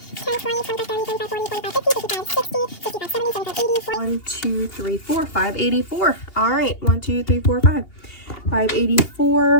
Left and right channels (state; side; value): late; right; 2.8 ms